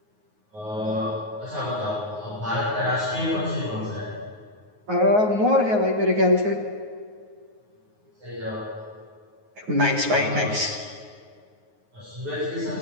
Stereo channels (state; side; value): late; left; 9.5 ms